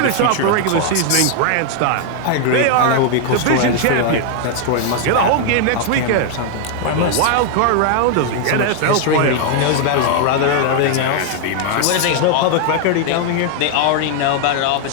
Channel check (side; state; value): both; different; correlation 0.00